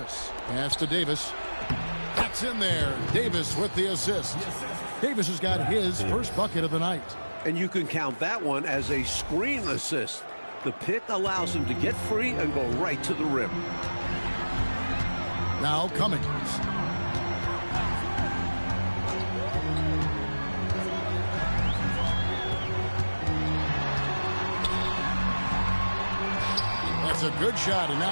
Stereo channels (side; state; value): both; inverted; correlation -1.00